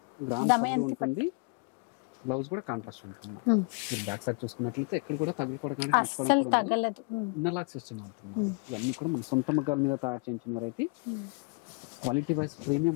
గ్రాండ్ పళ్ళు ఉంటుంది. బ్లౌజ్ కూడా కాంట్రాస్ట్ ఉంటుంది. మీరు బ్యాక్ సైడ్ చూసుకున్నట్లయితే ఎక్కడ కూడా తగులుకోవడం ఇన్నర్ సిస్టమ్ ఉంటుంది. ఇవన్నీ కూడా మన సొంత మగ్గాల మీద తయారు చేయించిన వెరైటీ. క్వాలిటీ వైజ్ ప్రీమియం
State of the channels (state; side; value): quieter; right; 32.6 dB